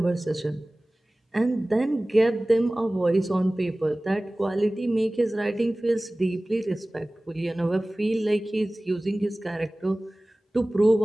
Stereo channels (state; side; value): normal; both; correlation 0.98